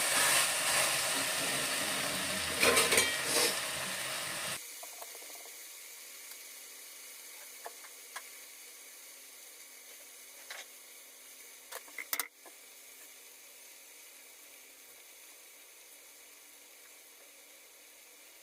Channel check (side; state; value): both; identical; correlation 1.00